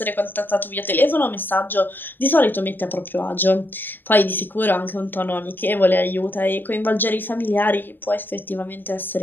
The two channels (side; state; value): right; late; 0.094 ms